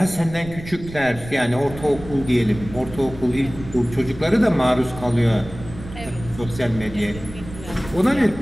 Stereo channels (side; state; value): right; noise; rumble, 14 dB below the sound